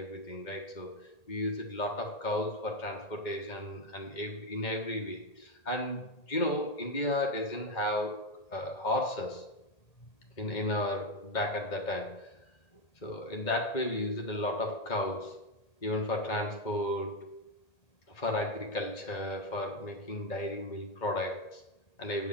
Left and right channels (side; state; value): right; late; 1.8 ms